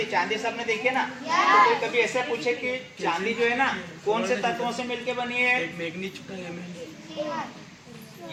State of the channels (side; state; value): both; identical; correlation 1.00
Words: चांदी सबने देखी है ना। तो कोई कभी ऐसा पूछे कि चांदी जो है ना कौन से तत्वों से मिलके बनी है?